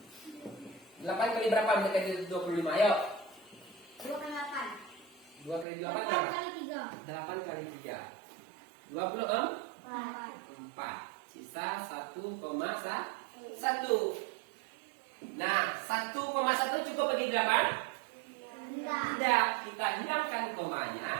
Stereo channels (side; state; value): left; drops out; at 5.7 s